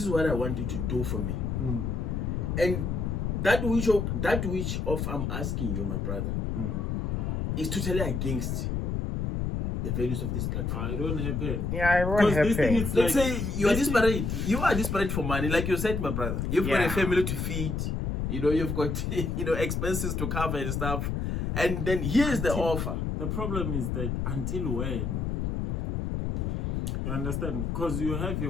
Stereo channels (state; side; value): noise; left; rumble, 1 dB below the sound